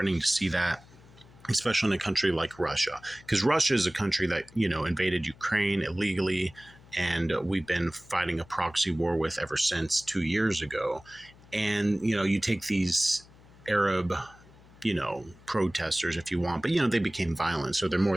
to see that, especially in a country like Russia, because Russia is a country that, invaded Ukraine illegally, and we've been fighting a proxy war with ever since 2 years ago. And, you take these Arab protesters, if you want, but they became violent, so they're more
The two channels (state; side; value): noise; left; hum, 24 dB below the sound